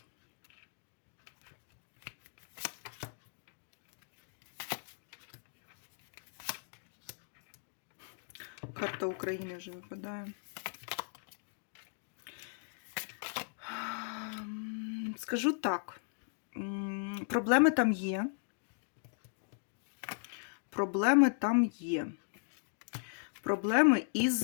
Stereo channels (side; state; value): right; silent; digital silence